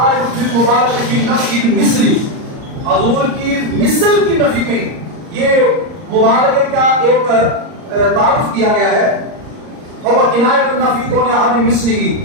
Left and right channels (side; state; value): left; late; 39 ms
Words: فی مبارک فی نفی مثلی حضور کی مثل کی نفی میں یہ مبارک کا ایک تعارف کیا گیا ہے اور کنایہ النفی کون احد مثلہ،